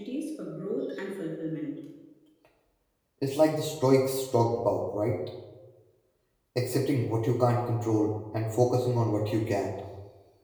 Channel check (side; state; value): both; identical; correlation 1.00